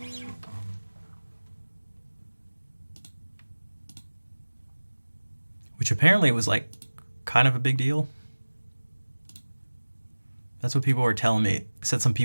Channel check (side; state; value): both; inverted; correlation -1.00